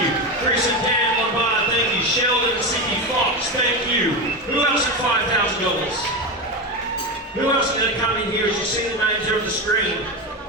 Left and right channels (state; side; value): normal; both; correlation 0.17